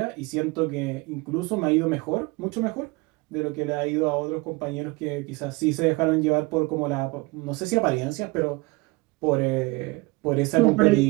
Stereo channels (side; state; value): left; quieter; 24.4 dB